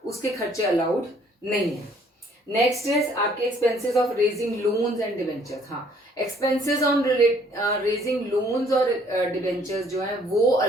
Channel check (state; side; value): normal; both; correlation 0.61